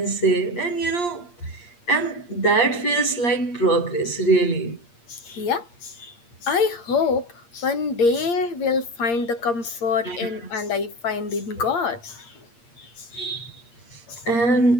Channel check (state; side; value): late; right; 8.6 ms